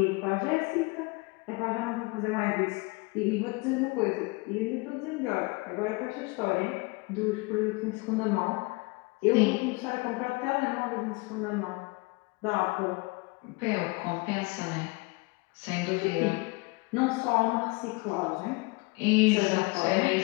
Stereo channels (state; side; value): quieter; right; 26.9 dB